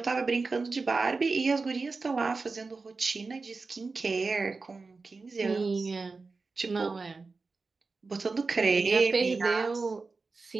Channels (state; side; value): quieter; left; 4.1 dB